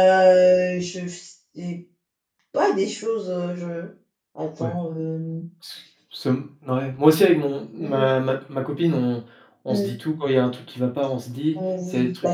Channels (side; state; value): both; identical; correlation 1.00